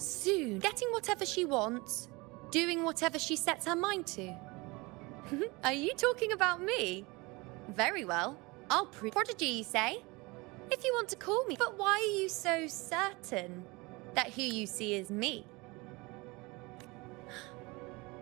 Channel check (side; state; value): left; quieter; 24.7 dB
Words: getting whatever she wants, doing whatever she sets her mind to. Are you talking about me? Very well. I'll prove. Prodigy, you say? If you want to call me. But why are you so certain that who you see is me?